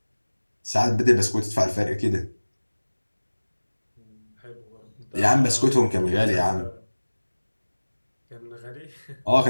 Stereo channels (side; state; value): both; inverted; correlation -1.00